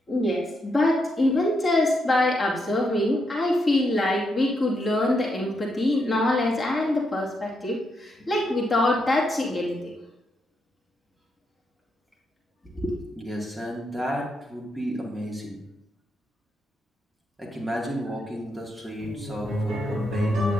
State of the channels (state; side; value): normal; both; correlation 0.81